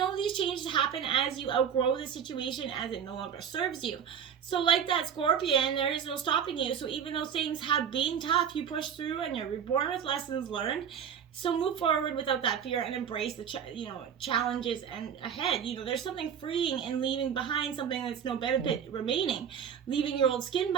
these changes happen as you outgrow the situation, as it no longer serves you. So like that Scorpion, there is no stopping you. So even though things have been tough, you push through and you're reborn with lessons learned. So move forward without that fear and embrace the challenges and ahead. There's something freeing in leaving behind something that's no benefit remaining, leaving your old skin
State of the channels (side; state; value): left; quieter; 8.0 dB